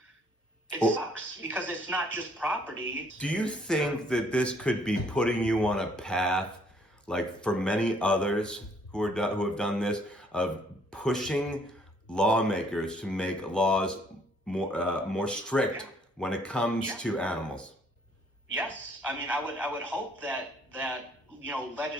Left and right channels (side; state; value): both; normal; correlation 0.64